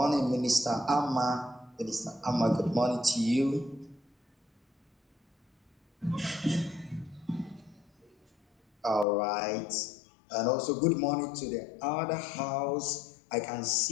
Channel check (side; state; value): right; drops out; at 9.1 s